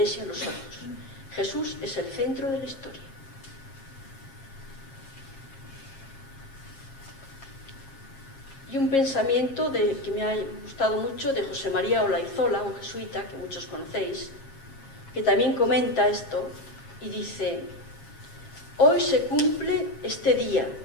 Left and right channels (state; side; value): late; right; 7.4 ms